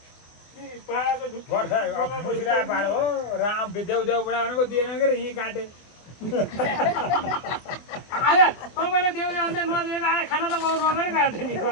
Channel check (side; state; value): right; late; 24 ms